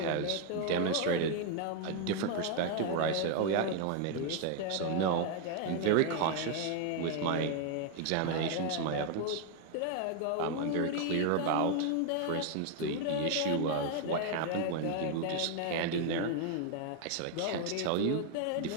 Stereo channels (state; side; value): different; both; correlation 0.00